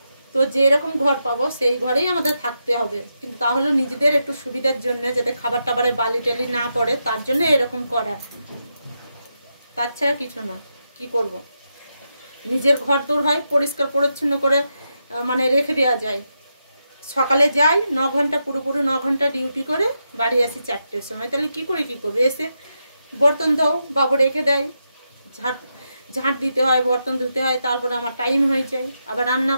তো যেরকম ঘর পাবো সেই ঘরেই আমাদের থাকতে হবে, কিন্তু তাহলে নিজেদের একটু সুবিধার জন্য, যাতে খাবার টাবারে বালি টালি না পড়ে, তার জন্য এরকম করা, তাছাড়া কিছু না। কি করব, নিজের ঘর তোর হয় পরিষ্কার পরিচ্ছন্ন করে মানে রেখে দেওয়া যায়। সকালে যাই 9 ঘন্টা, পুরোপুরি 9 ঘন্টা ডিউটি করে বাড়ি আসি 4টের সময়, তাহলে কি করবে? এসে বর্তন দাও, বাবু রেখে দেয়, ঝাঁট দিতে হয়, বর্তন ধুতে হয়, তারপরে আমার টাইম হয়ে যায়, আবার রান্না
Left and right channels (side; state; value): both; inverted; correlation -0.85